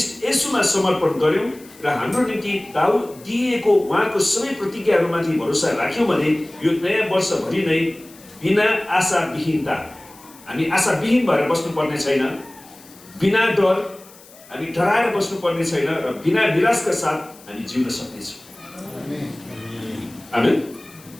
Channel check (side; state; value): left; noise; hiss, 23 dB below the sound